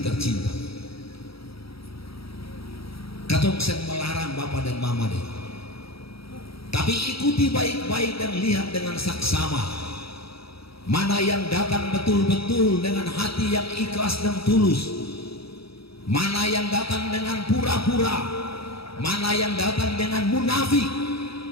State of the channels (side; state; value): right; late; 0.76 ms